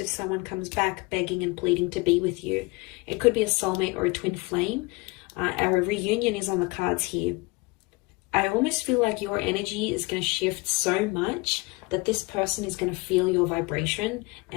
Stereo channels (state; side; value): quieter; right; 25.6 dB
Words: if someone comes back begging and pleading to be with you. It could be a soulmate or a twin flame. Our reunion is on the cards here. I almost feel like your energy is going to shift so much that this person is going to feel your vibration,